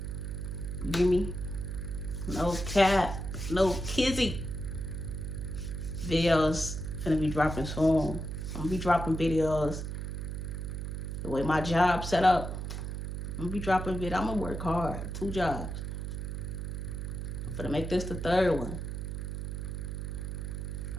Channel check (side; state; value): right; noise; hum, 4 dB below the sound